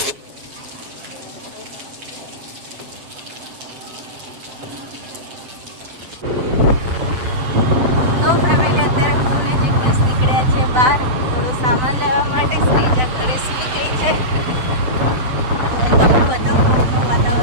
બહાર થોડો સામાન લેવા માટે. શ્રીજા ઘરે સૂઈ ગઈ છે. તમને બતાવું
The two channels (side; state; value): left; late; 8.2 ms